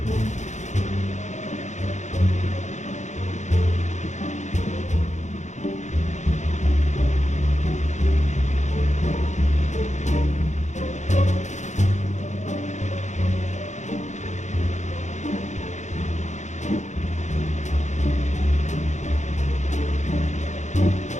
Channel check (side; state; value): right; late; 0.34 ms